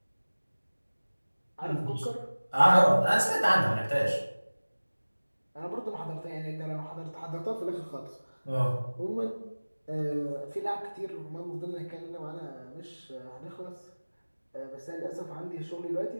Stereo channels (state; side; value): inverted; both; correlation -1.00